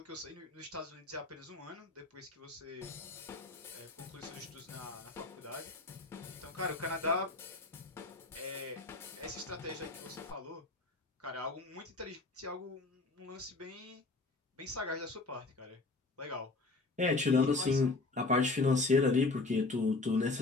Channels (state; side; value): quieter; right; 3.5 dB